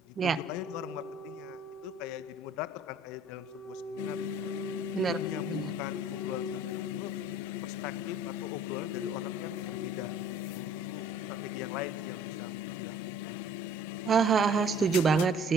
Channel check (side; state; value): both; normal; correlation 0.53